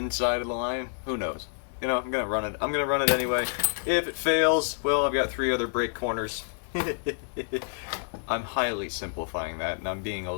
of the line. Who knows? You know, I'm going to run it. I'm going to run it anyway. If it fails, well, I've got 3 other brake corners. I'm highly simplifying that, and I'm being a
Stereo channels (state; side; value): silent; right; digital silence